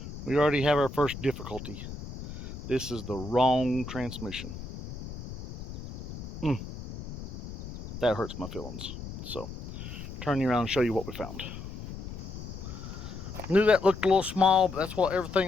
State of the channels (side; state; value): left; noise; rumble, 10 dB below the sound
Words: We already have our first difficulty. This is the wrong transmission. That hurts my feelings. So turn you around and show you what we found. Knew that looked a little small, but that's what